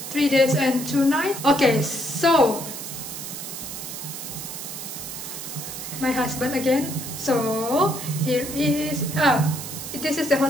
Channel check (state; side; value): noise; right; hiss, 8 dB below the sound